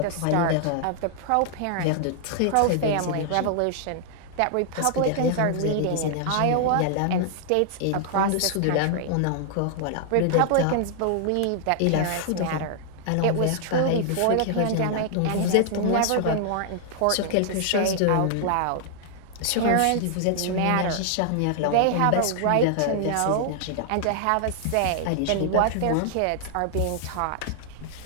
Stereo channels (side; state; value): both; different; correlation -0.01